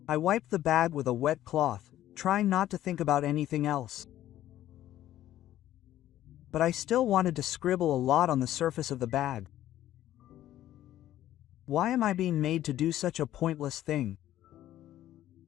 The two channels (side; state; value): right; quieter; 13.1 dB